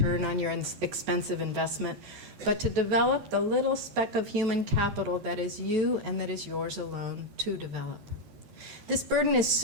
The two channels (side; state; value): left; late; 14 ms